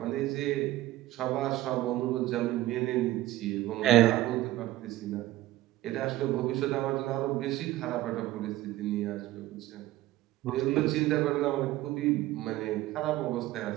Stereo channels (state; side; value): quieter; left; 16.1 dB